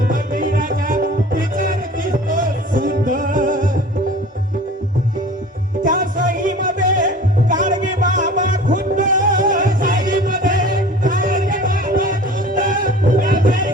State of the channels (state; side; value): normal; both; correlation 0.43